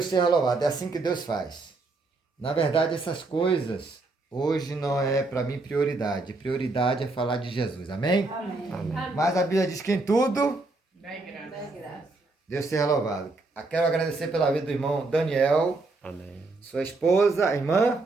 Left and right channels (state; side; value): quieter; left; 3.4 dB